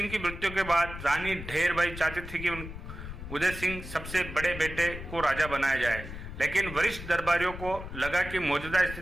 की मृत्यु के बाद रानी ढेर भाई चाहती थी कि उदय सिंह सबसे बड़े बेटे को राजा बनाया जाए, लेकिन वरिष्ठ दरबारियों को लगा कि मौजूदा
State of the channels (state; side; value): noise; left; rumble, 10 dB below the sound